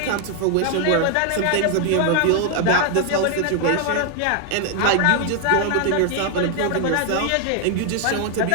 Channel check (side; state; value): both; different; correlation 0.00